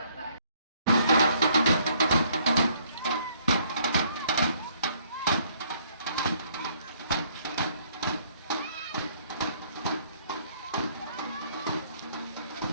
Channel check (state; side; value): inverted; both; correlation -0.64